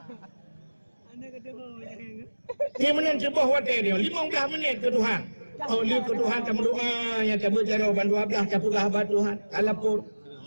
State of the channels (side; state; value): both; inverted; correlation -1.00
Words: Dia menang sebuah wadah dia 15 minit ke Tuhan. Oh lihat ke Tuhan kamu doa yang kamu jawaban 12 kamu sahabat Tuhan. Alapur.